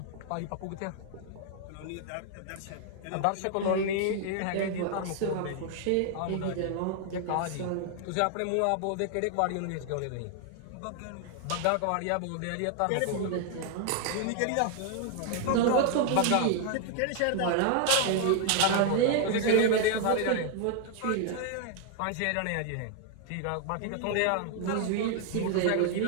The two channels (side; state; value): both; different; correlation 0.00